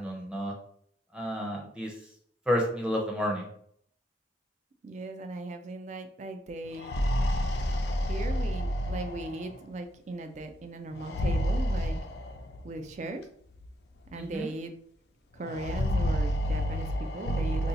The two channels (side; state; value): both; normal; correlation 0.78